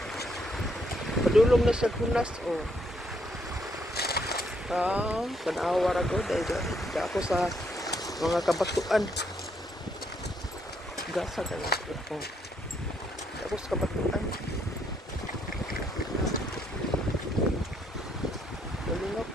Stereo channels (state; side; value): normal; both; correlation 0.72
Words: padulong na sa hunas o. Kanawa ra ko dahil di ako sa mga kabatuan. Gasa kaya ako. Di ako sa kabatuan. Galing ako